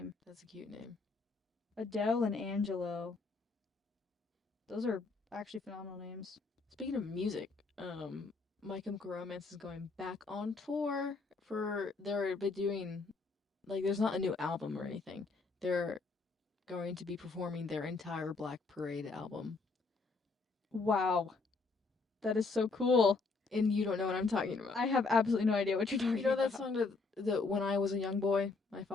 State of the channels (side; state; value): right; quieter; 4.0 dB